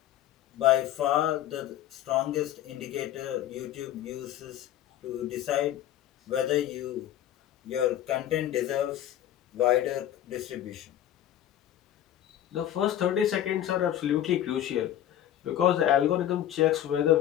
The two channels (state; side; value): quieter; right; 11.8 dB